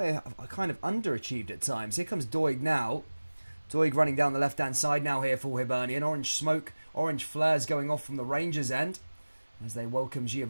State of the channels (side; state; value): both; inverted; correlation -1.00